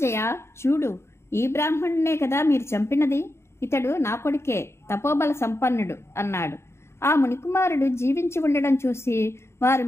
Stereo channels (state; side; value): late; right; 0.13 ms